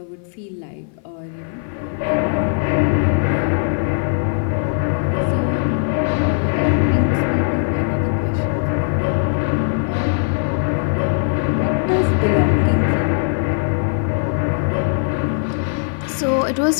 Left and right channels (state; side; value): silent; right; 56 dB below the other